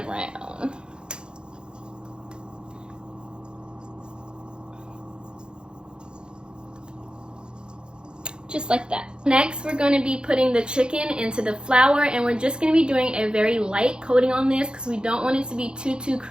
around. Just like that. Next, we're going to be putting the chicken into the flour, and we're just going to be doing a very light coating on this because we don't want it to be too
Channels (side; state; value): left; late; 0.049 ms